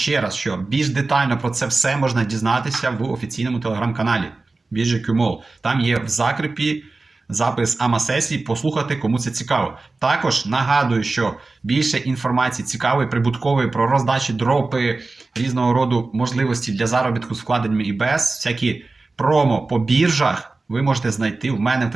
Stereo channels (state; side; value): quieter; left; 3.5 dB